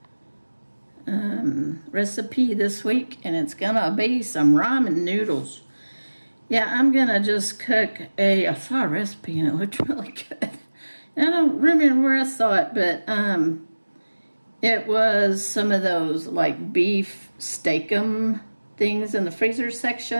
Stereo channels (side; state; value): both; inverted; correlation -1.00